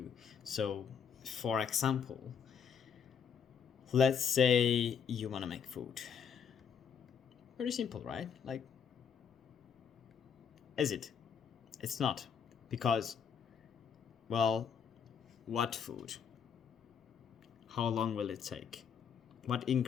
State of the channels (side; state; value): right; quieter; 7.2 dB